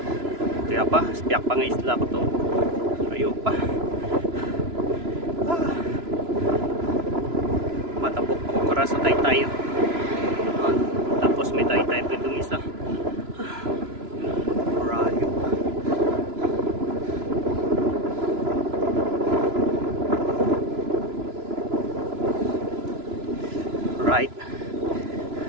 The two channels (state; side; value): late; left; 3.0 ms